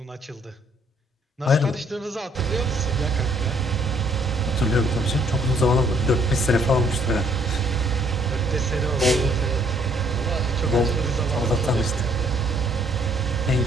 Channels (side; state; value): both; normal; correlation 0.64